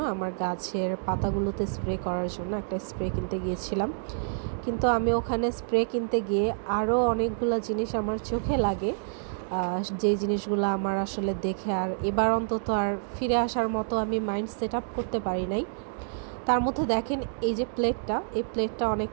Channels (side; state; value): left; silent; digital silence